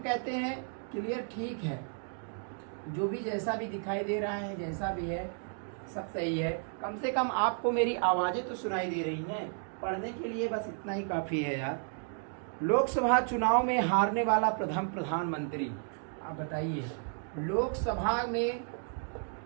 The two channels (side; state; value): left; silent; 56 dB below the other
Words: कहते हैं क्लियर ठीक है, जो भी जैसा भी दिखाई दे रहा है, जैसा भी है सब सही है। कम से कम आपको मेरी आवाज़ें तो सुनाई दे रही हैं, पढ़ने के लिए बस इतना ही काफ़ी है यार। लोकसभा चुनाव में हारने वाला प्रथम प्रधानमंत्री, आप बताइए।